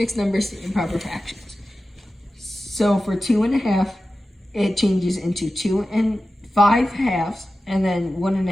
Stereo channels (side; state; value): both; normal; correlation 0.94